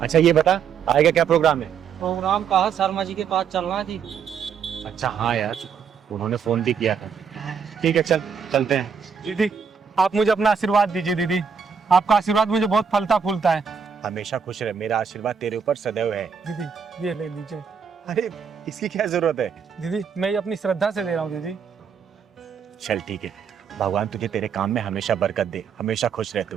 अच्छा ये बता, आएगा क्या प्रोग्राम है? प्रोग्राम कहा शर्मा जी के पास चलना थी। अच्छा हाँ यार, उन्होंने फोन भी किया था। ठीक है चल, चलते हैं। दीदी आप मुझे अपना आशीर्वाद दीजिए दीदी, आपका आशीर्वाद मुझे बहुत फलता फूलता है। हमेशा खुश रहे, मेरा आशीर्वाद तेरे ऊपर सदैव है। दीदी ये ले लीजिए। अरे इसकी क्या जरूरत है? दीदी मैं ये अपनी श्रद्धा से दे रहा हूँ दीदी। चल ठीक है, भगवान तुझे तेरे काम में हमेशा बरकत दे, हमेशा खुश रह तू।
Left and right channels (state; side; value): quieter; left; 6.7 dB